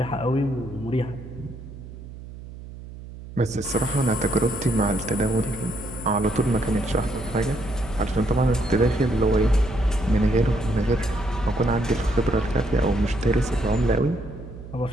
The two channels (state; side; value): noise; right; hum, 14 dB below the sound